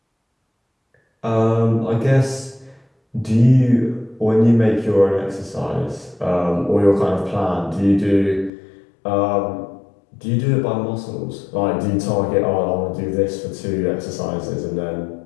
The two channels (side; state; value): right; drops out; at 8.5 s